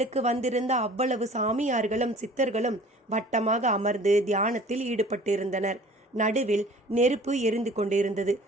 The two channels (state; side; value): normal; both; correlation 0.48